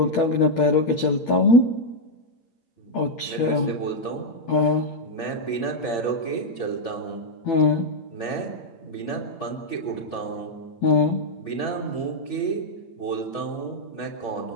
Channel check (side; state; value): right; late; 8.7 ms